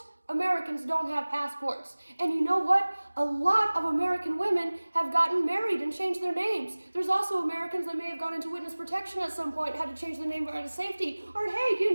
Americans don't have passports. And you know what? A lot of American women have gotten married and changed their names. There's also Americans that may have gone into witness protection at some point, had to change their name out of safety. Or hey, you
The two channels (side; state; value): both; inverted; correlation -1.00